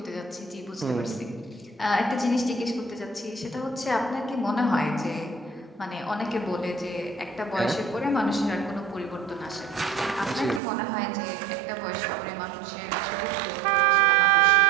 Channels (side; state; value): left; drops out; at 10.6 s